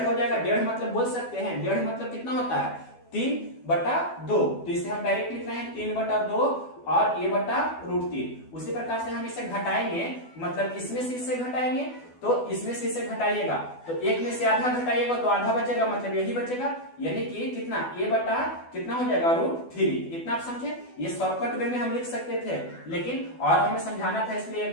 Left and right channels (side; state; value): right; late; 12 ms